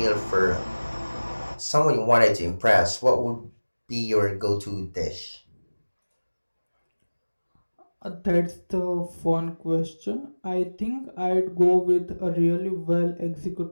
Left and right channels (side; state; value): both; inverted; correlation -1.00